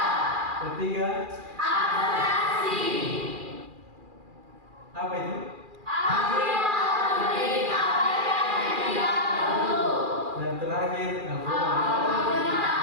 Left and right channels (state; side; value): late; left; 2.4 ms